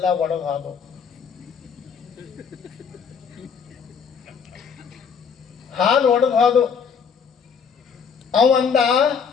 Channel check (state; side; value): quieter; right; 6.4 dB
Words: ಒಣಗೋದು. ಹಾಲು ಒಣಗೋದು. ಅವಂದ